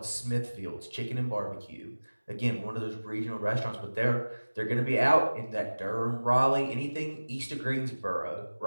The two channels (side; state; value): both; inverted; correlation -1.00